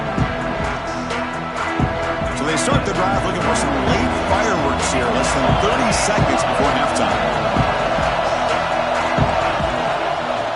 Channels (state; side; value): identical; both; correlation 1.00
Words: Start the drive looking for some late fireworks here. Less than 30 seconds before halftime.